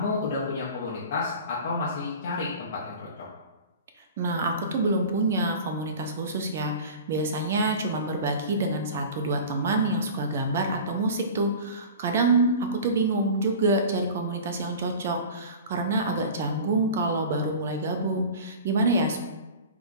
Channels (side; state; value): both; inverted; correlation -0.37